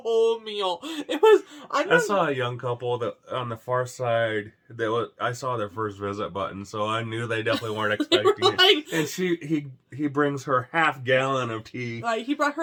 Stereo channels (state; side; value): identical; both; correlation 1.00